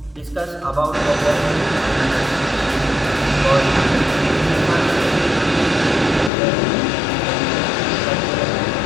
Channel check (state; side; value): drops out; right; at 6.3 s